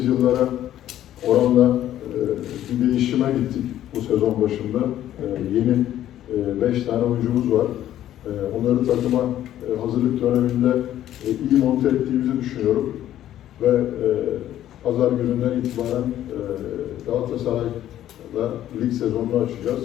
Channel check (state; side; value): quieter; right; 12.2 dB